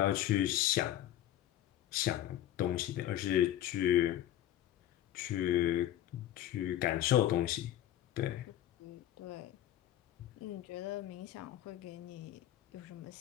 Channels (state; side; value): quieter; right; 12.6 dB